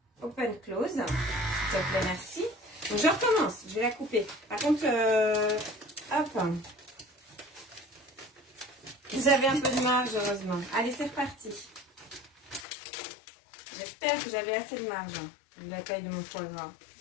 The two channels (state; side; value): drops out; right; at 12.7 s